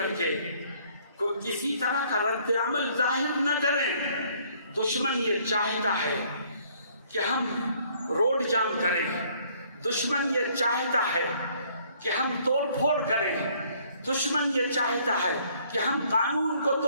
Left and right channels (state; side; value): inverted; both; correlation -0.62